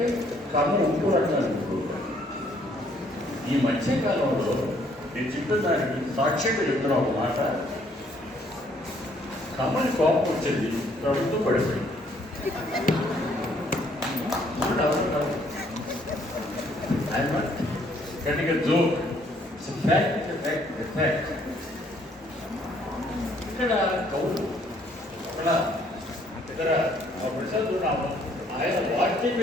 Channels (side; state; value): both; normal; correlation 0.65